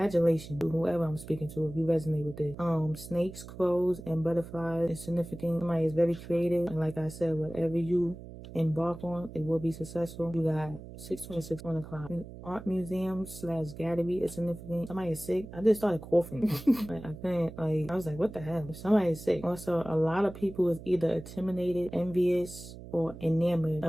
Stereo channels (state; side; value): noise; right; hum, 14 dB below the sound